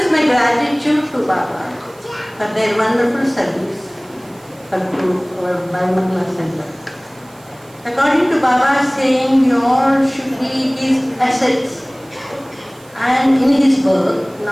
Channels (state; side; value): noise; right; hiss, 27 dB below the sound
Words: my gratitude to Baba for their wonderful service to our Bairamangala Center. According to Baba's saying, we all should be his assets and in his work,